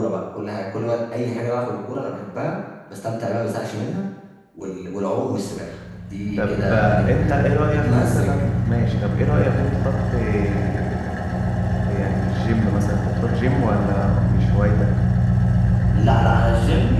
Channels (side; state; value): both; identical; correlation 1.00